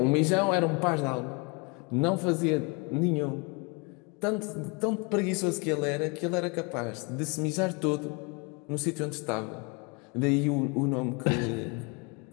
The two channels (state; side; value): quieter; right; 30.7 dB